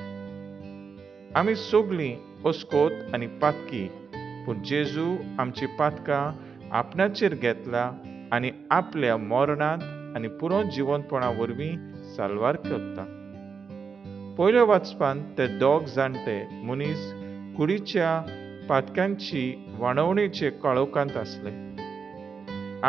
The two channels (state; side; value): quieter; left; 5.7 dB